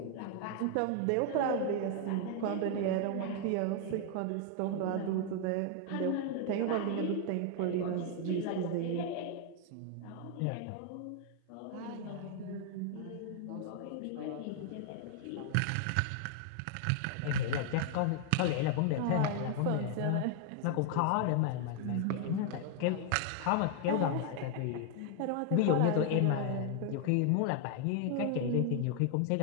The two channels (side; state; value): both; different; correlation 0.00